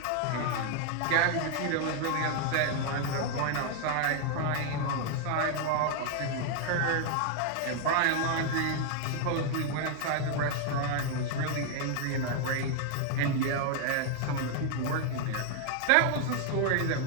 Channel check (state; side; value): different; both; correlation 0.00